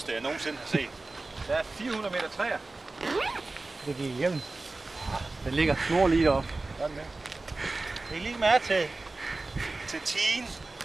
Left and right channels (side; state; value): left; quieter; 3.3 dB